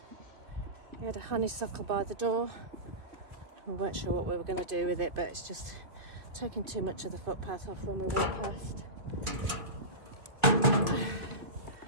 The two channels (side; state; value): left; late; 2.5 ms